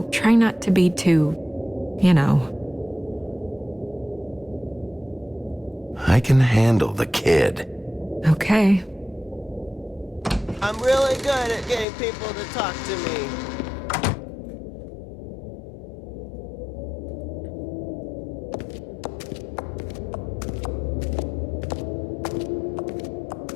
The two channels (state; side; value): drops out; right; at 11.9 s